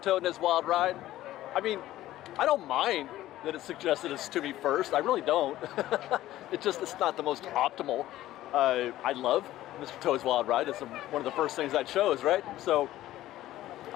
Toad and his wild ride. I mean, I don't mind that it suggested it's to me first. I really don't. It's not the most optimal. I love Mr. Toad's Wild Ride. It's one of the first things I chose, right? So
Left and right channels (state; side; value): quieter; right; 14.7 dB